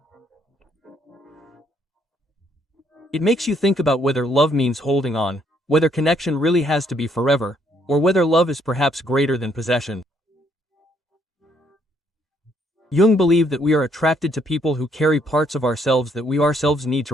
It makes you think about whether love means holding on, whether connection really has to be forever, or whether love is perhaps greater than possession. Jung believed that we are attracted to people who carry parts of ourselves that we ourselves need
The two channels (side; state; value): both; normal; correlation 0.69